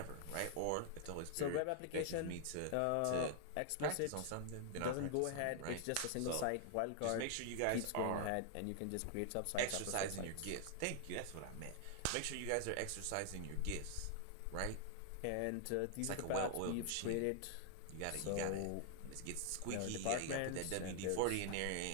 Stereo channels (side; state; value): both; different; correlation 0.00